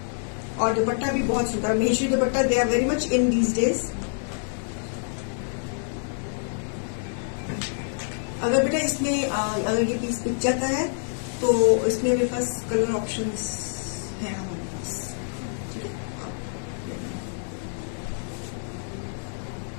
और दुपट्टा भी बहुत सुंदर, Maheshwari dupatta, they are very much in these days. अगर बेटा इसमें अगर ये पीस बिक जाता है तो इसमें मेरे पास कलर ऑप्शंस हैं हमारे पास। ठीक है,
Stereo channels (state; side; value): silent; right; digital silence